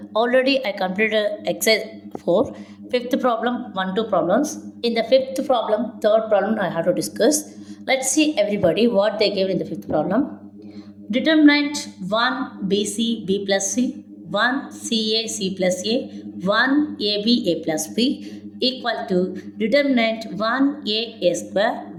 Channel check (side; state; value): both; identical; correlation 1.00